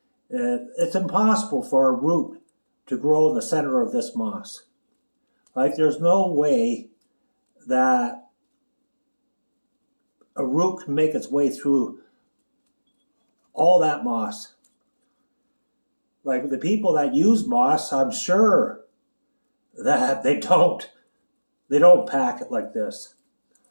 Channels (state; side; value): inverted; both; correlation -1.00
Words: it's impossible for a root to grow in the center of this moss. There's no way that a root can make its way through all that moss. The people that use moss, I'm sure that they don't pack it like this.